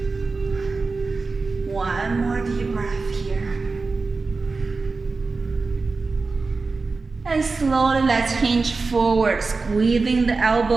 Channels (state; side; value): quieter; left; 4.0 dB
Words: 1 more deep breath here. And slowly let's hinge forward, squeezing the